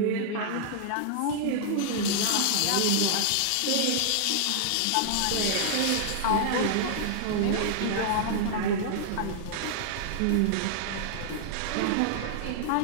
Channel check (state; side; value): different; both; correlation -0.01